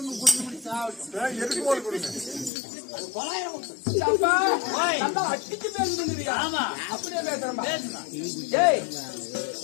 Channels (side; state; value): right; drops out; at 2.5 s